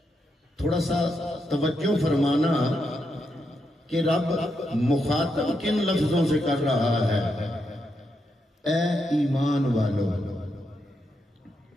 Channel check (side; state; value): both; normal; correlation 0.82